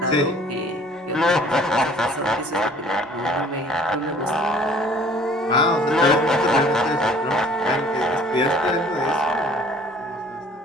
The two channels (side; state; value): both; normal; correlation 0.53